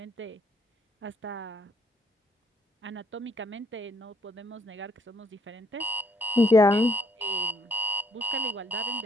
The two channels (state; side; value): normal; both; correlation 0.68